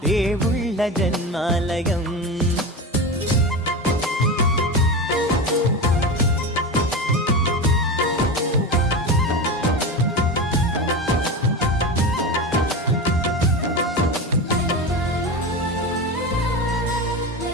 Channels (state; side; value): normal; both; correlation 0.23